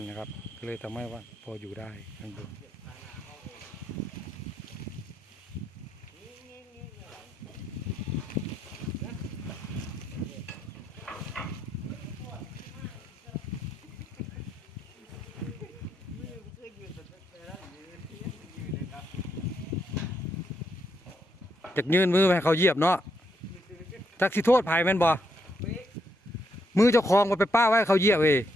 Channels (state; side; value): normal; both; correlation 0.78